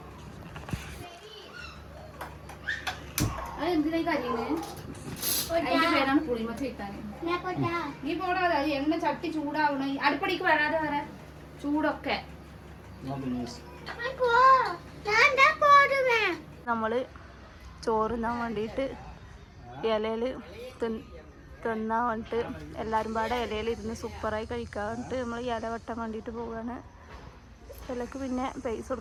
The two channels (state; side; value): identical; both; correlation 1.00